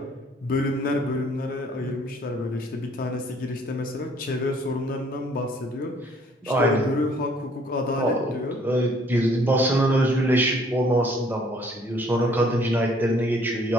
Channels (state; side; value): normal; both; correlation 0.60